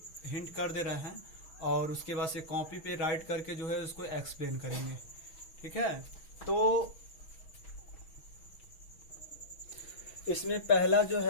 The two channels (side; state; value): right; late; 6.3 ms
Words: हिंट कर दे रहे हैं और उसके बाद से कॉपी पे राइट करके जो है उसको एक्सप्लेन करेंगे। ठीक है, तो इसमें पहला जो